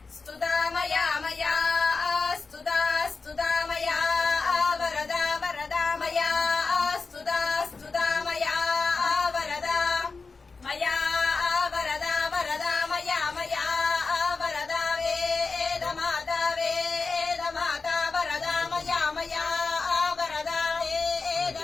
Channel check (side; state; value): right; quieter; 4.3 dB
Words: स्तुतामया मया स्तुता स्तुतामया वरदा वरदा मया स्तुता स्तुतामया वरदा मया वरदा वरदा मया मया वरदा वेदमाता वरदा मया मया वरदा